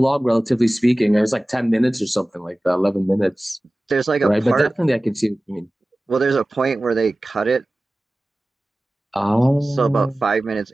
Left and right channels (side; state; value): both; normal; correlation 0.97